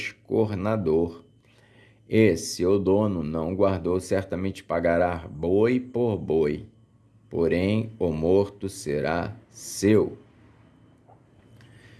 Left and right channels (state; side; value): identical; both; correlation 1.00